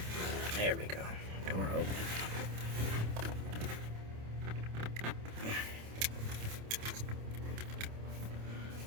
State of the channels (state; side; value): late; left; 27 ms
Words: There we go. Door open.